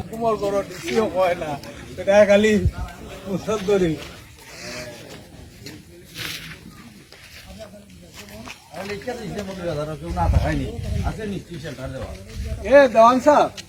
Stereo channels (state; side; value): identical; both; correlation 1.00